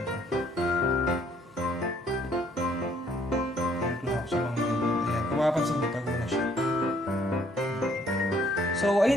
Ito na ako sa mga ganyan. Ayan, kung mapapansin mo, tago na siya. So,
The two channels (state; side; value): normal; both; correlation 0.64